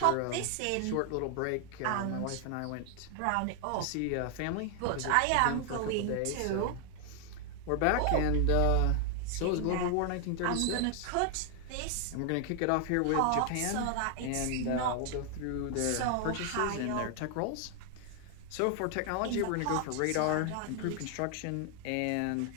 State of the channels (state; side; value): different; both; correlation 0.00